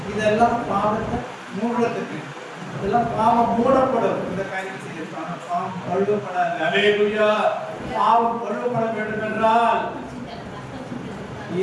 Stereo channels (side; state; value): both; identical; correlation 1.00